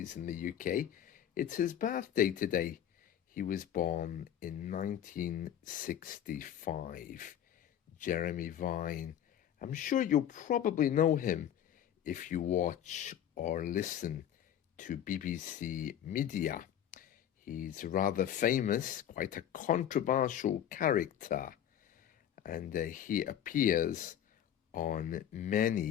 in the UK. It's his birthday today. He was born in 1965. Jeremy Vine. I'm sure you'll probably know him if you watch or listen to BBC Media. He's rather famous, quite a controversial character, and he appears on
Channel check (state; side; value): quieter; right; 10.3 dB